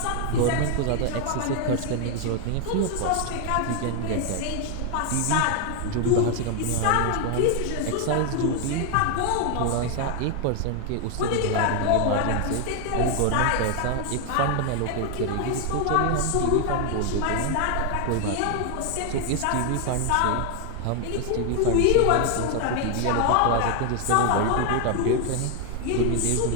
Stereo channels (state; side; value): different; both; correlation 0.00